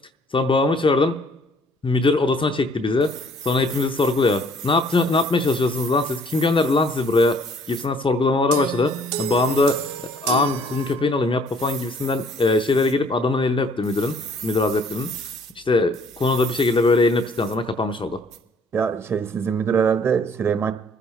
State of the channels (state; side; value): normal; both; correlation 0.59